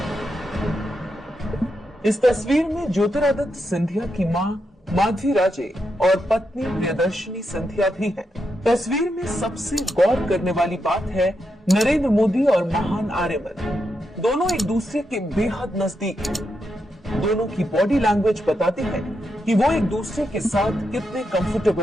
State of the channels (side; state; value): both; normal; correlation 0.84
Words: इस तस्वीर में ज्योतिरादित्य सिंधिया की मां माधवी राजे और पत्नी प्रियदर्शनी सिंधिया भी हैं। तस्वीर में सबसे गौर करने वाली बात है नरेंद्र मोदी और महान आर्यमन दोनों एक दूसरे के बेहद नजदीक हैं। दोनों की बॉडी लैंग्वेज बताती है कि वो एक दूसरे के साथ कितने